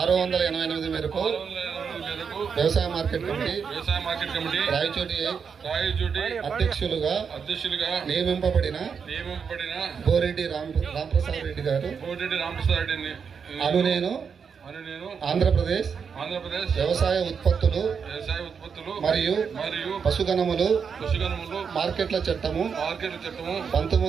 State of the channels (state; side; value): quieter; left; 6.3 dB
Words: 688 మేరకు వ్యవసాయ మార్కెట్ కమిటీ రాయచోటి అధ్యక్షులుగా నియమింపబడిన బోరెడ్డి రాంప్రసాద్ రెడ్డి గారు అను నేను ఆంధ్రప్రదేశ్ వ్యవసాయ ఉత్పత్తులు మరియు పశుగణములు మార్కెట్ల చట్టము